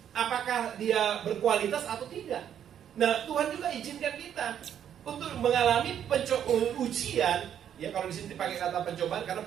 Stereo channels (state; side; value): quieter; left; 9.5 dB